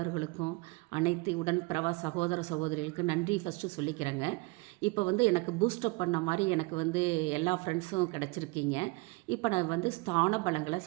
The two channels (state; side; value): quieter; left; 26.5 dB